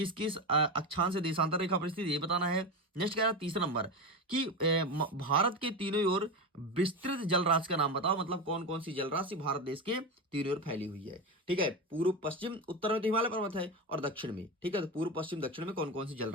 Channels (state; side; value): normal; both; correlation 0.19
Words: किस अक्षांश से देशांतर रेखा पर स्थित, ये बताना है। नेक्स्ट कह रहा है तीसरा नंबर कि भारत के तीनों ओर विस्तृत जलराशि का नाम बताओ, मतलब कौन कौन सी जलराशि भारत देश के तीनों ओर फैली हुई है। ठीक है, पूर्व पश्चिम उत्तर में तो हिमालय पर्वत है और दक्षिण में, ठीक है, तो पूर्व पश्चिम दक्षिण में कौन कौन सी